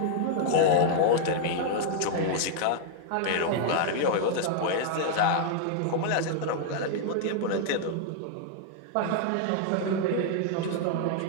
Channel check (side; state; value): both; different; correlation -0.01